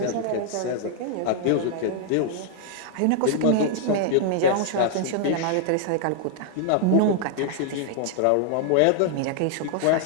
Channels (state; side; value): different; both; correlation 0.00